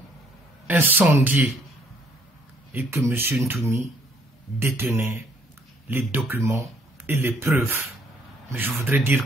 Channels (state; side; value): normal; both; correlation 0.65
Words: incendiée, et que M. Ntoumi détenait les documents et les preuves. Mais je voudrais dire